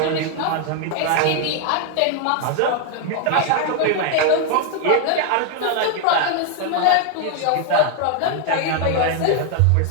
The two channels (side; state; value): both; different; correlation 0.01